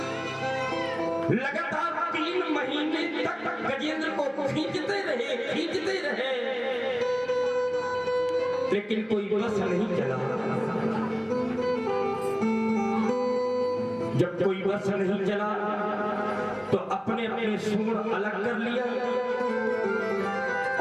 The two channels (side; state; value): both; identical; correlation 1.00